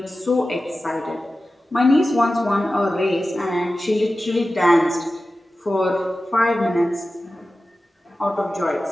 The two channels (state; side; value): normal; both; correlation 0.94